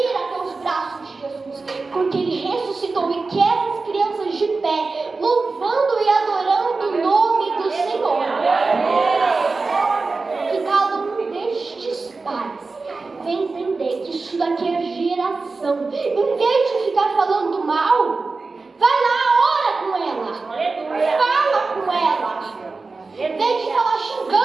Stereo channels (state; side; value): quieter; left; 3.9 dB